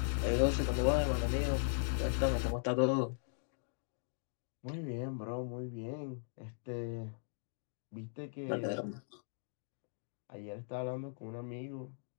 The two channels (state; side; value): silent; right; digital silence